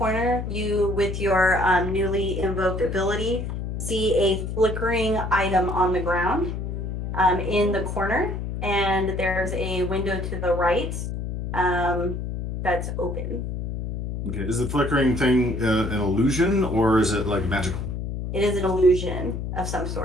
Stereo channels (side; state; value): left; noise; hum, 4 dB below the sound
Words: you, with your newly invoked ability, see a flickering item on the ground in the corner, and there's a window to the right that's open. Okay, is the flickering thing an illusion or is it like magical? It is an illusion of some